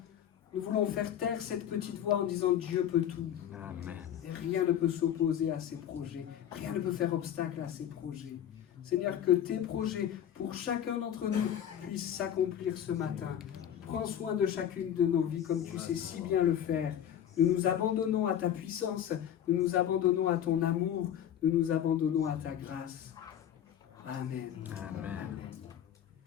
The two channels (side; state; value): right; quieter; 10.0 dB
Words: nous voulons faire taire cette petite voix en disant Dieu peut tout. Amen. Et rien ne peut s'opposer à ses projets. Rien ne peut faire obstacle à ses projets. Seigneur, que tes projets pour chacun d'entre nous puissent s'accomplir ce matin. Prends soin de chacune de nos vies comme tu sais si bien le faire. Nous nous abandonnons à ta puissance, nous nous abandonnons à ton amour, nous nous abandonnons à ta grâce. Amen. Amen.